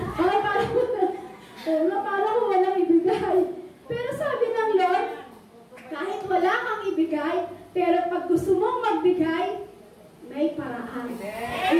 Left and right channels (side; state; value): both; identical; correlation 1.00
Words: parang walang ibigay. Pero sabi ng Lord, kahit wala kang ibigay, pero pag gusto mong magbigay, may paraan.